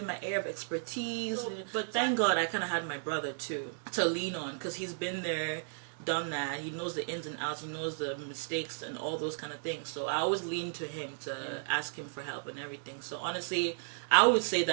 my area of expertise. But thank God I kind of had my brother too to lean on, because he's been there, done that. He knows the ins and outs, he knows the mistakes and all those kind of things. So I always lean to him to ask him for help and everything. So honestly, I would say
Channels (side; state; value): left; silent; digital silence